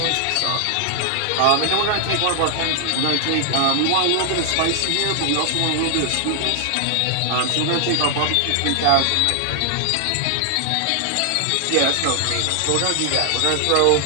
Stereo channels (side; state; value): both; different; correlation 0.00